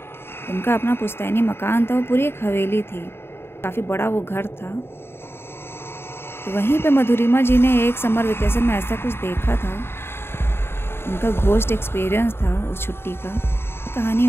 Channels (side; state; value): right; late; 0.11 ms